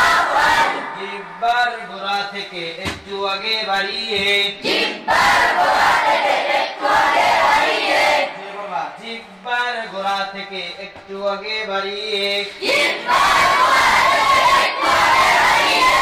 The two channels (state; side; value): identical; both; correlation 1.00